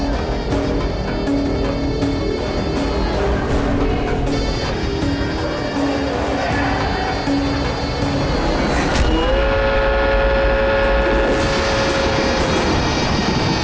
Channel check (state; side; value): identical; both; correlation 1.00